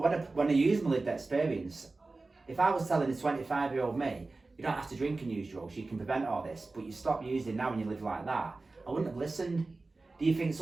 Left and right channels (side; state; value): left; quieter; 3.5 dB